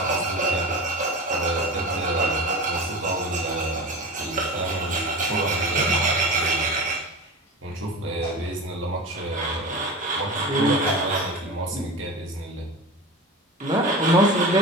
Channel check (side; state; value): both; normal; correlation 0.30